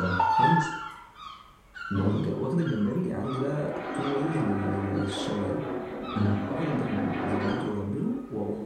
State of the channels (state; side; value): identical; both; correlation 1.00